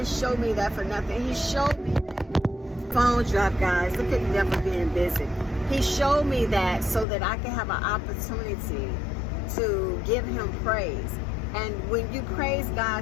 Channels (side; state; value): right; drops out; at 7.1 s